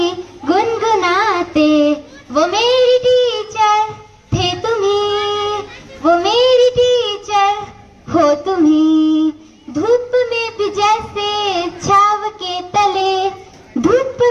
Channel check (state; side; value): identical; both; correlation 1.00